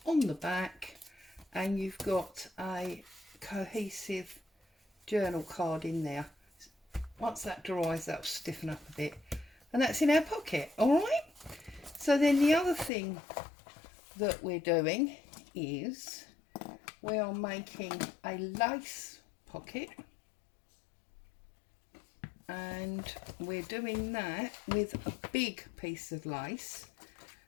on the back, and you've got a cohesive journal card in there. Once that dries, that'll stiffen up a bit, and that's in our pocket. All right, so then the other thing that we're doing is we are making a lace pocket, and we're doing that with a big piece of lace,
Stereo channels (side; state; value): right; drops out; at 12.9 s